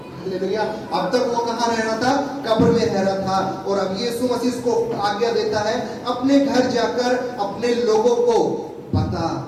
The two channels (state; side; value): identical; both; correlation 1.00